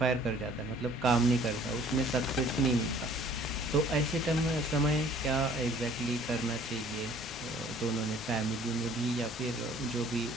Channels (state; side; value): normal; both; correlation 0.54